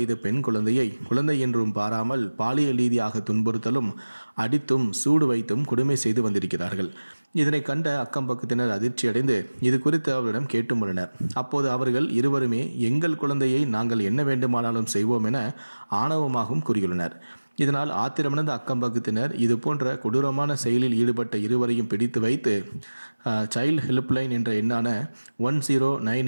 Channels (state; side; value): inverted; both; correlation -1.00